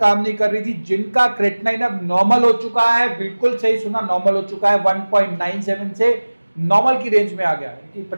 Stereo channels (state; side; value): inverted; both; correlation -1.00